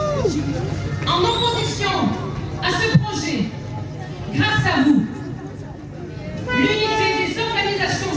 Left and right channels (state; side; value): identical; both; correlation 1.00